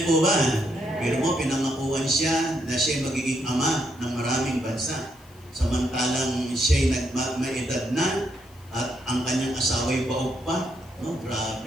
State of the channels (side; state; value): left; noise; hiss, 28 dB below the sound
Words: po ba? Pero mo, pinangakuan siya na siya magiging ama ng maraming bansa. Samantalang siya'y may edad na at ang kanyang asawa'y baog pa. No,